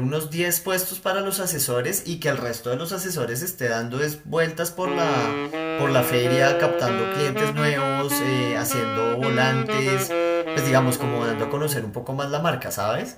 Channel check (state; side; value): identical; both; correlation 1.00